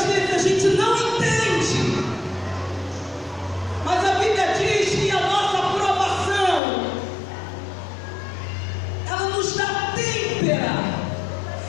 vezes a gente não entende. Mas a Bíblia diz que a nossa aprovação, ela nos dá têmpera,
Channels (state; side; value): drops out; right; at 6.6 s